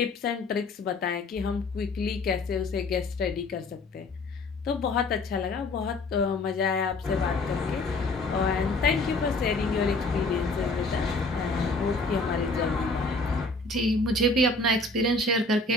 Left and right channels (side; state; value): right; quieter; 3.0 dB